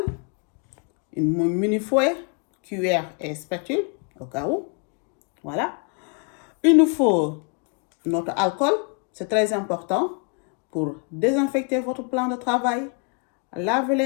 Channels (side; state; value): right; quieter; 37.8 dB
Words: une mini fouet, cuillère et spatule, au cas où. Voilà. Il nous faut notre alcool, c'est très important pour désinfecter votre plan de travail, laver